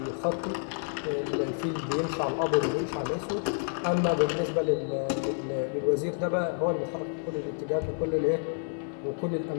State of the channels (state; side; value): silent; right; 58 dB below the other